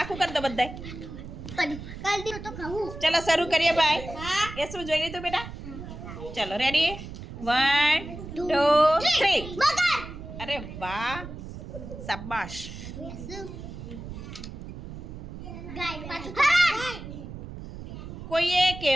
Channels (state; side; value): noise; right; rumble, 11 dB below the sound